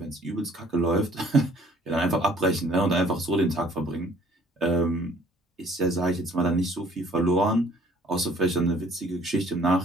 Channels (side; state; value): both; normal; correlation 0.57